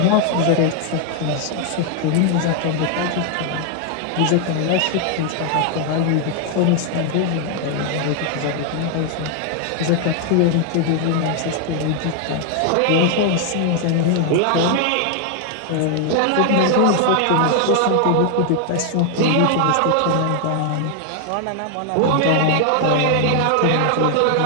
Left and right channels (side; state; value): both; different; correlation 0.00